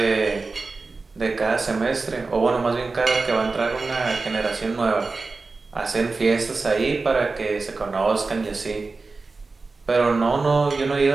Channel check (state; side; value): quieter; left; 3.9 dB